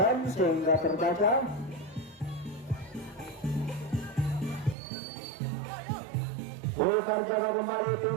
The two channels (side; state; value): left; drops out; at 4.8 s